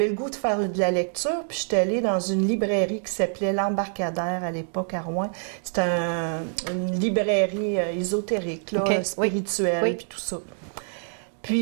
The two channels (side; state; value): left; silent; digital silence